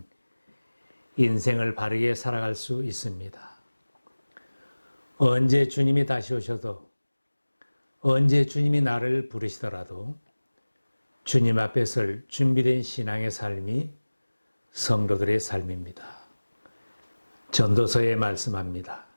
인생을 바르게 살아갈 수 있습니다. 언제 주님이 다시 오셔도, 언제 주님이 나를 부르시더라도 주님 앞에 설 준비된 신앙의 삶이 성도들의 삶입니다. 전도서에 말씀합니다.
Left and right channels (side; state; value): both; inverted; correlation -1.00